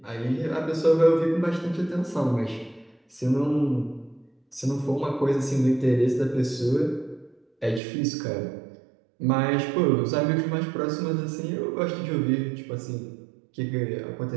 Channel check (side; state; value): left; drops out; at 7.8 s